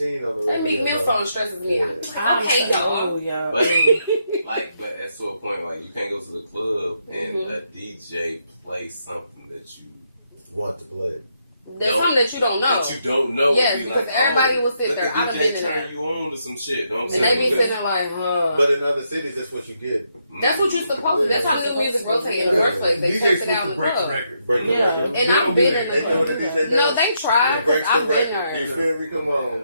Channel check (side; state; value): both; inverted; correlation -0.78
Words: on the radio. That Meek Mill song stresses me. I'm like, okay, y'all. But at to a point, like, you can't go to the club and a DJ play something that you want to play. There's something that you don't know. That you don't know. Yes, because everybody will sit there. I've been in there. Turn you on to some shit. Don't and they be sitting there like, But in other cities, that's what you get. That's what you're supposed to. That's how new music rotate in the first place. They test it out in the club. And I've been in the club. No, they try. I've been there. You feel me? Come